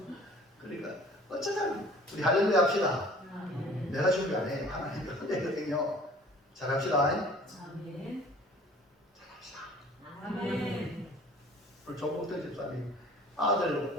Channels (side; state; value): both; normal; correlation 0.49